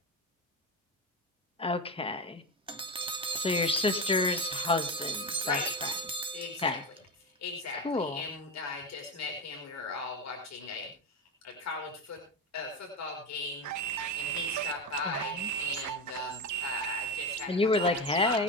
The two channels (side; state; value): both; normal; correlation 0.17